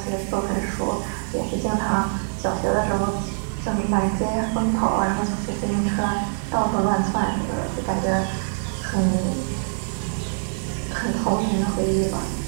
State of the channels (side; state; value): left; silent; digital silence